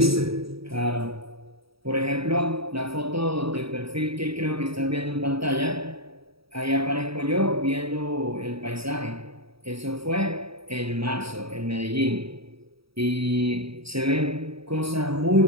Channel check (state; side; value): late; left; 0.76 ms